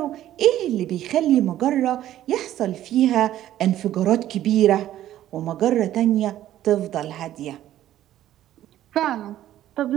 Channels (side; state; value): left; quieter; 12.8 dB